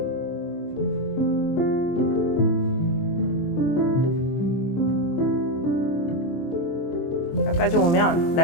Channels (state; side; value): late; right; 23 ms